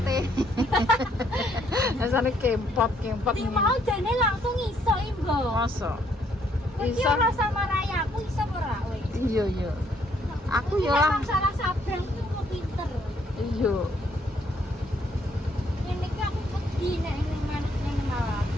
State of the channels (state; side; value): normal; both; correlation 0.69